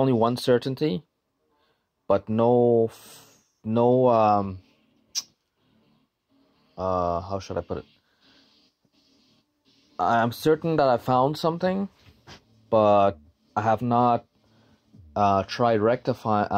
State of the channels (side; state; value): both; identical; correlation 1.00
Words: one certainty, but how should I put it? I'm certain that I found something, but I have not tried